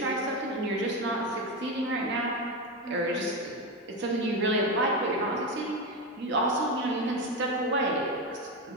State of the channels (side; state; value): both; normal; correlation 0.14